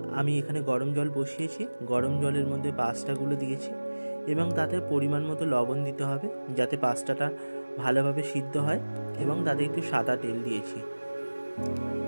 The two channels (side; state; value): both; inverted; correlation -1.00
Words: আমি এখানে গরম জল বসিয়েছি, গরম জলের মধ্যে পাস্তাগুলো দিয়েছি এবং তাতে পরিমাণ মতো লবণ দিতে হবে যাতে পাস্তাটা ভালোভাবে সিদ্ধ হয়, এবং তাতে একটু সাদা তেল দিয়েছি।